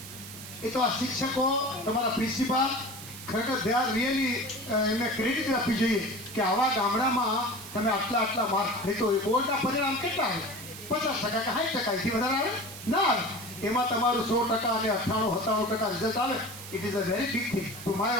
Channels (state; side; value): noise; right; hiss, 13 dB below the sound